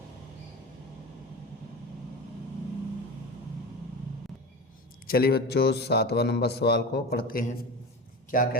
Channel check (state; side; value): normal; both; correlation 0.28